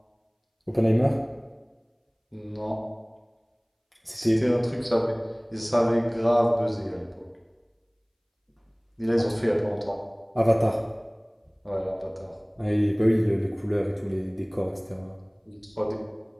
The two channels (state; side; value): identical; both; correlation 1.00